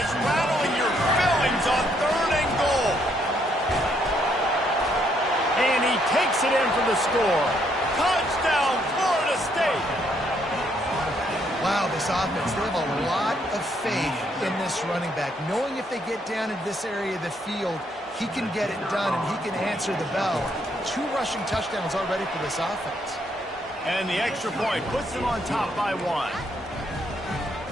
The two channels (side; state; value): both; normal; correlation 0.72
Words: rattling your fillings on 3rd and goal. And he takes it in for the score. Touchdown, Florida State. Wow, this offense, they have a lot of faith in this running back, knowing if they get down in this area of the field, he can get it done and he can answer the bell. 2 rushing touchdowns already for this offense. And the extra point puts them on top by 1.